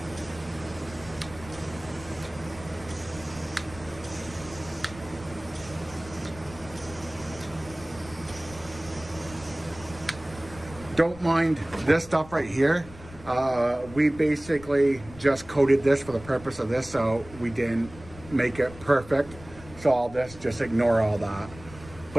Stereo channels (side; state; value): left; noise; rumble, 17 dB below the sound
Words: Don't mind this stuff right here. We basically just coated this for the purpose of this, so we didn't make it perfect. So all this, just ignore all that.